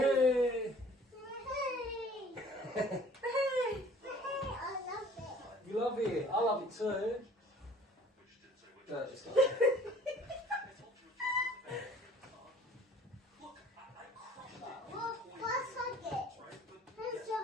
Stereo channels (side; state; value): both; normal; correlation 0.51